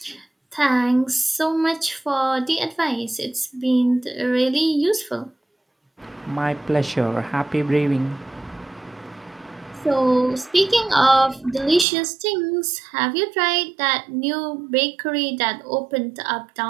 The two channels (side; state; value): left; drops out; at 11.9 s